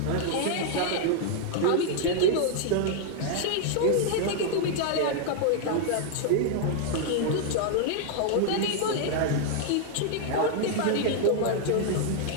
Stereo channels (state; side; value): different; both; correlation 0.00